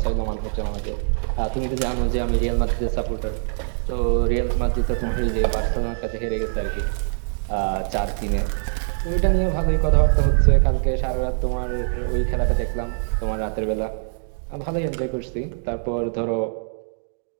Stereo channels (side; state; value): left; silent; digital silence